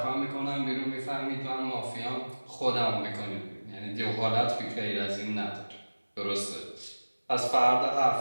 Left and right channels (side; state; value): both; inverted; correlation -1.00